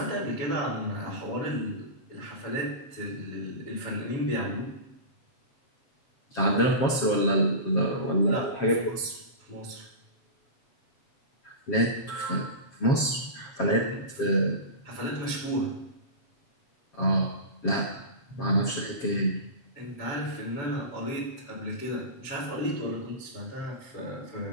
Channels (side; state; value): right; late; 7.4 ms